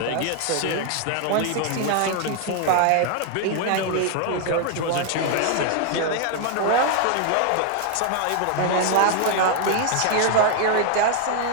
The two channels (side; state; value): both; different; correlation 0.00